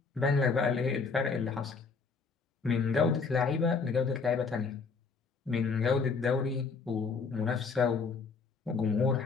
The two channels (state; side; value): quieter; right; 4.9 dB